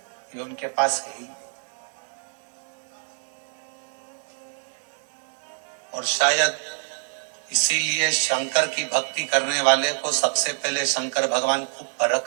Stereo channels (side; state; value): left; silent; 61 dB below the other